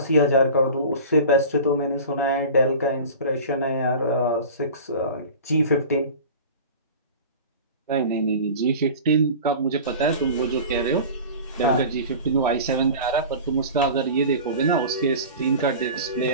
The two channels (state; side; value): inverted; both; correlation -0.36